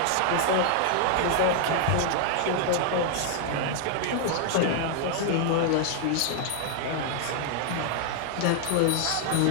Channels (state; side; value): different; both; correlation 0.00